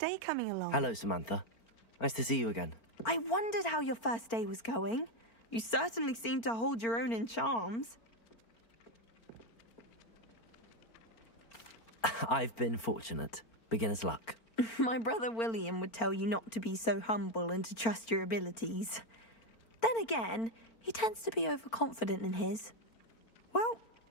coming along? Hello, Samantha. Nice to see you again. I wondered how your first day was going. You certainly seem to hold your own in charms. I've been fortunate. Beginner's luck. My brother William would tell you not to be so humble and to trust your abilities. Then again, he tends to be overconfident in his. Well,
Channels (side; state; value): right; late; 4.4 ms